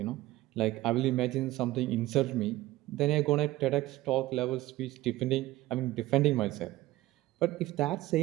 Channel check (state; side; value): quieter; left; 17.1 dB